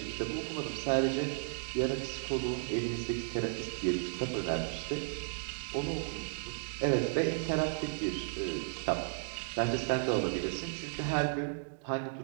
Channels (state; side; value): silent; left; digital silence